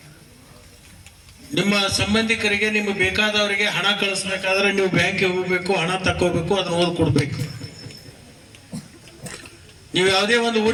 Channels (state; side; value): identical; both; correlation 1.00